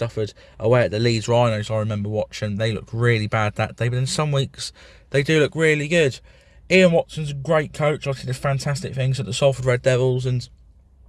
away at the Leeds Rhinos. I remember watching. They looked really bad that day, but in some weeks they do look really good. Ian Watson's a great coach. Obviously, did fantastic things at the Salford Red Devils, and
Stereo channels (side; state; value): both; identical; correlation 1.00